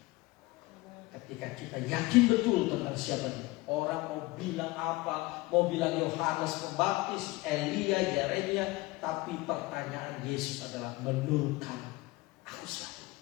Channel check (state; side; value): quieter; right; 21.2 dB